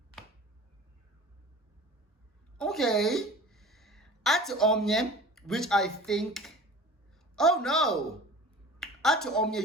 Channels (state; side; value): normal; both; correlation 0.41